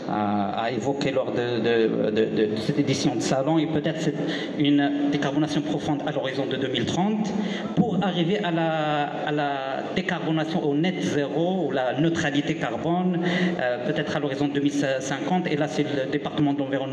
évoqué lors de cette édition de salon, et peut-être une décarbonation profonde à l'horizon de 2030 pour arriver à la décarbonation au net zéro ou la neutralité carbone, peut-être à l'horizon 2050. Et là c'est le département de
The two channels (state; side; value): identical; both; correlation 1.00